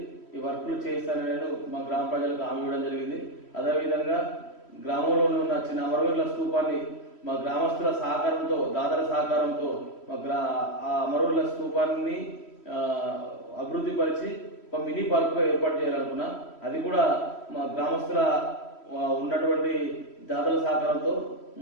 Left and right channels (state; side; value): late; right; 3.1 ms